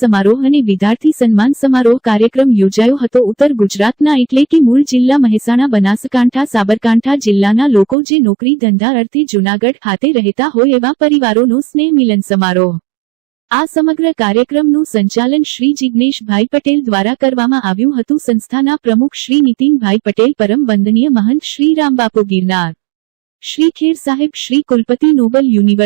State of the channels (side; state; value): left; drops out; at 8.0 s